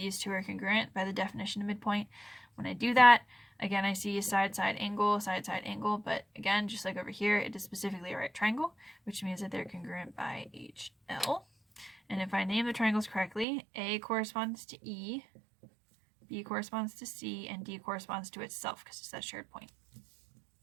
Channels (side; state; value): left; drops out; at 13.5 s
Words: two are congruent by the definition of midpoint. When I do that, again, I see side-side angle, but again, just like over here, it is specifically a right triangle, which means that they're congruent by HL. And if I name the triangles correctly, A corresponds to E, B corresponds to C, and D corresponds to itself because it's that shared point.